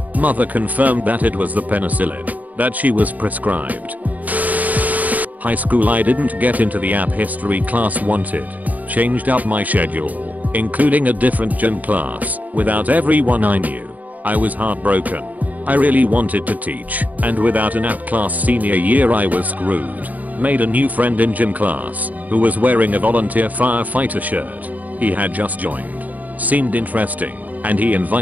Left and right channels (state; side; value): late; left; 0.076 ms